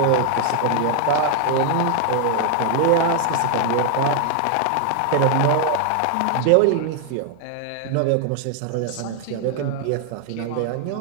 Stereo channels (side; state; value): both; different; correlation 0.00